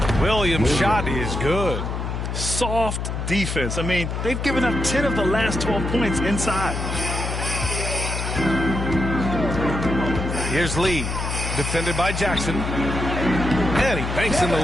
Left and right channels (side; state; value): left; noise; hum, 3 dB below the sound